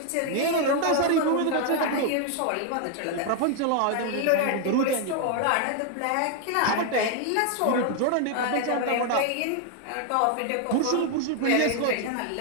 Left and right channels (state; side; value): different; both; correlation 0.00